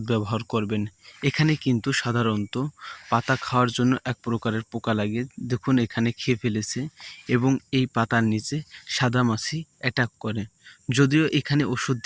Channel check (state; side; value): identical; both; correlation 1.00